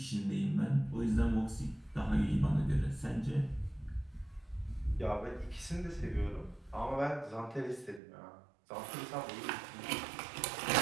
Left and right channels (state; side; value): drops out; left; at 8.0 s